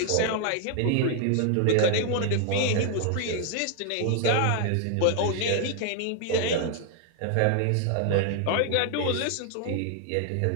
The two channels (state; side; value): different; both; correlation 0.00